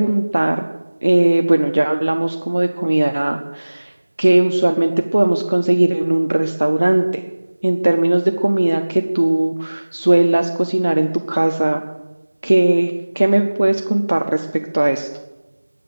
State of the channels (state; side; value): inverted; both; correlation -1.00